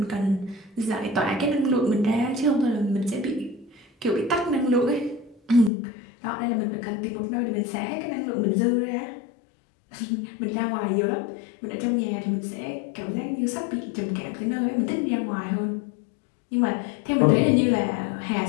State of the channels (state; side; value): drops out; right; at 5.7 s